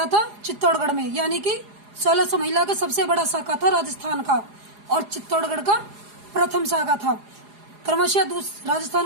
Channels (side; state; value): left; late; 4.8 ms